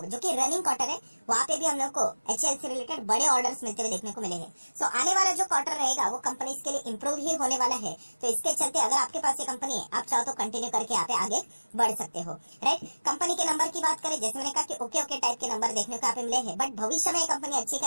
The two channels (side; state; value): both; inverted; correlation -1.00